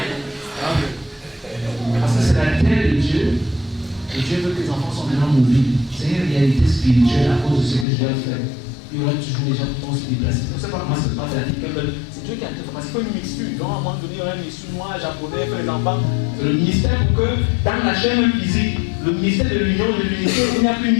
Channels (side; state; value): right; drops out; at 7.9 s